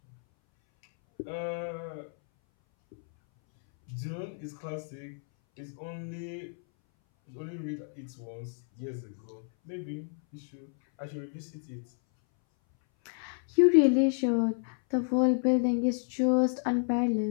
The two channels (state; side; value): silent; right; 58 dB below the other